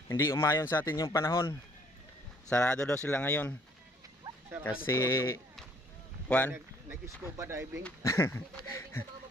hindi umayon sa atin yung panahon. Sarado daw sila ngayon. Kasi nag-scuba diving.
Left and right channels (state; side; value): normal; both; correlation 0.62